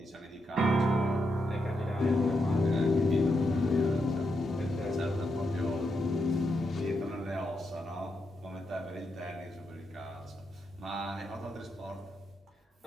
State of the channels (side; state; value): both; normal; correlation 0.82